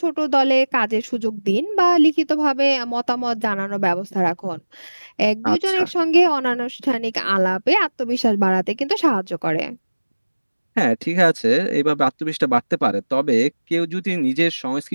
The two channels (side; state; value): both; inverted; correlation -1.00